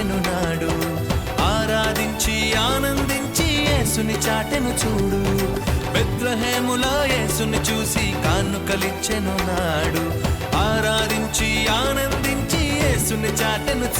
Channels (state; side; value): identical; both; correlation 1.00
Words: నాడు ఆరాధించి ఆనందించి యేసుని చాటెను చూడు బెత్లెహేములో యేసుని చూసి కానుకలిచ్చెను నాడు ఆరాధించి ఆనందించి యేసుని చాటెను